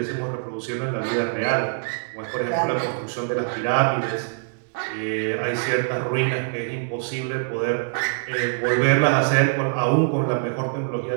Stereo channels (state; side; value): silent; left; digital silence